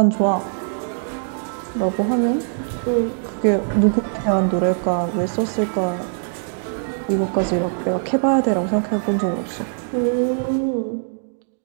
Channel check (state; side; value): silent; left; digital silence